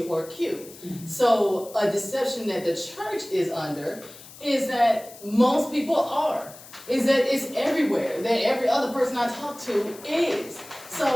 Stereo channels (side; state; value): left; noise; hiss, 18 dB below the sound